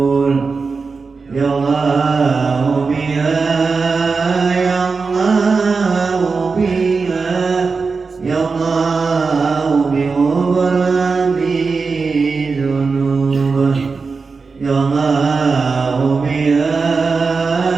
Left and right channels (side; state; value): left; quieter; 4.6 dB